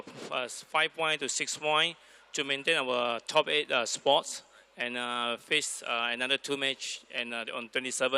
5 points to 6 points to maintain our top 8 spots. And face another 2 match and on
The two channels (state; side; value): identical; both; correlation 1.00